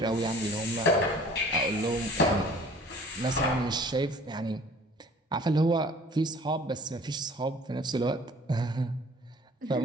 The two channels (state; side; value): normal; both; correlation 0.50